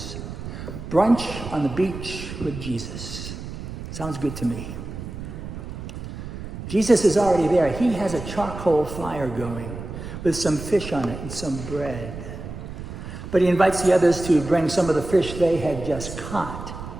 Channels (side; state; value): right; noise; rumble, 9 dB below the sound